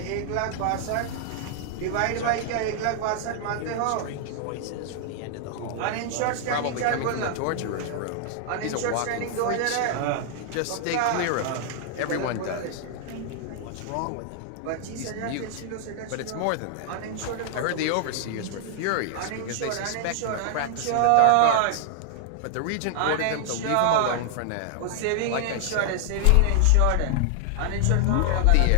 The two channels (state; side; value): different; both; correlation 0.00